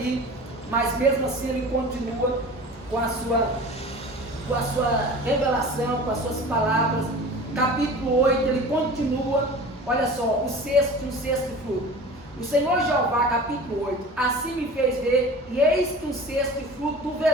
mas mesmo assim ele continua com a sua revelação, com as suas palavras. Capítulo 8, ele continua, olha só, um sexto fruto. O Senhor Jeová, capítulo 8, assim me fez ver, e eis que um sexto fruto do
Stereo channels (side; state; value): both; normal; correlation 0.38